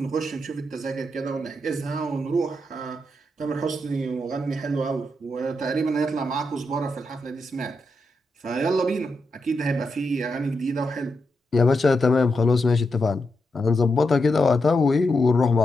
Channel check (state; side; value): normal; both; correlation 0.85